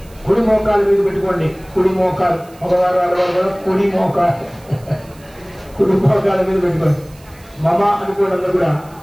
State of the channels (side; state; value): right; noise; hiss, 26 dB below the sound